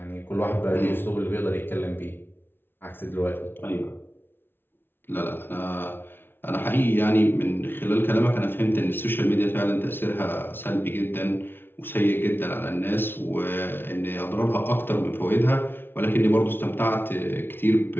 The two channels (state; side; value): late; right; 0.10 ms